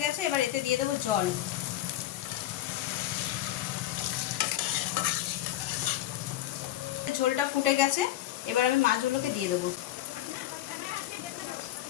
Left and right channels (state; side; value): quieter; right; 13.7 dB